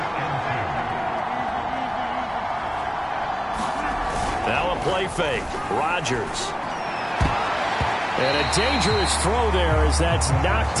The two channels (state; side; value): identical; both; correlation 1.00